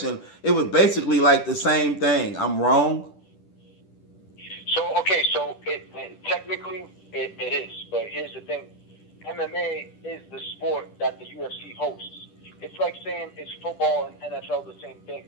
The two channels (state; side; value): late; right; 10 ms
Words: it was basically like the same thing. I'm wrong? So technically it is, but here's the thing. MMA is the sport that the UFC hosts. It's like saying, is football and NFL the same thing?